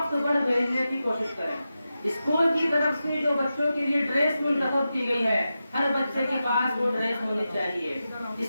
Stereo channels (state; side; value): inverted; both; correlation -0.91